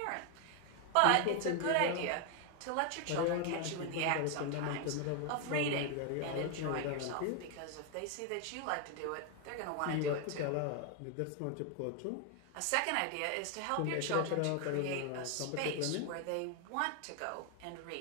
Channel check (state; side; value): different; both; correlation 0.01